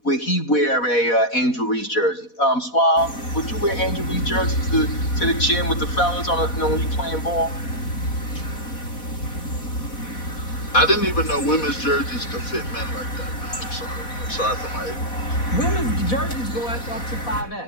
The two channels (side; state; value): right; late; 4.1 ms